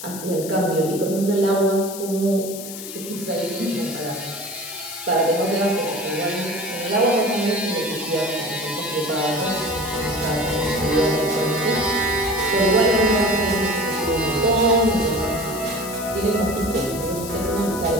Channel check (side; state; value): left; noise; hiss, 11 dB below the sound